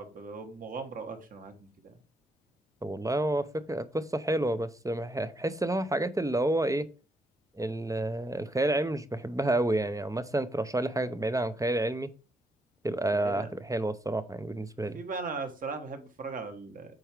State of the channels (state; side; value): normal; both; correlation 0.76